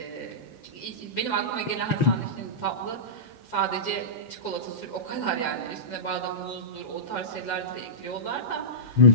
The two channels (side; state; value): right; late; 6.4 ms